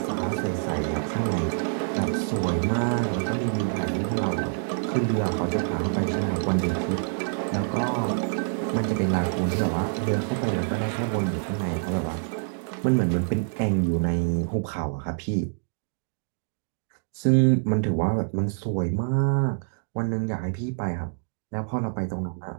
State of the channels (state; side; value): silent; left; digital silence